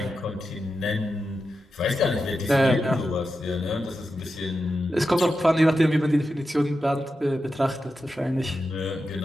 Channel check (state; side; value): normal; both; correlation 0.89